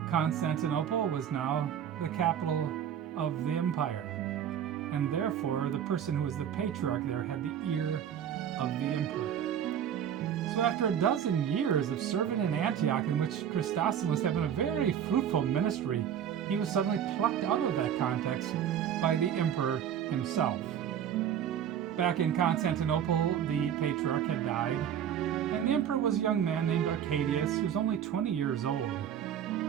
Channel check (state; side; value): quieter; left; 9.1 dB